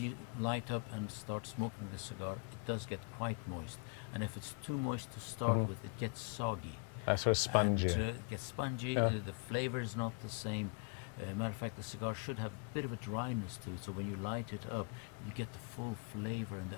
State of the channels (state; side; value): quieter; right; 34.2 dB